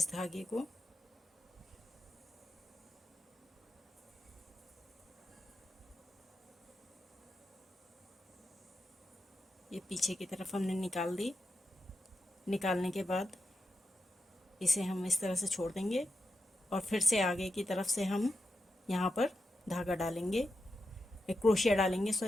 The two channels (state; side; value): normal; both; correlation 0.88